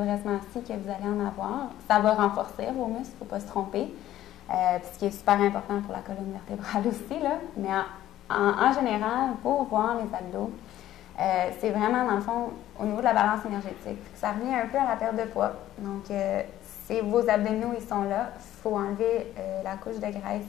assis que vous allez en avoir. Ça va renforcer vos muscles, il ne faut pas se tromper. Ce qui est super important pour la colonne vertébrale aussi, là. Mais en général, pour voir les abdos, c'est vraiment, dans le fond, au niveau de la balance énergétique. Ça revient un peu à la perte de poids. Donc, vos abdominaux, ils sont là. Il faut enlever la couche de graisse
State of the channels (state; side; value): quieter; right; 13.2 dB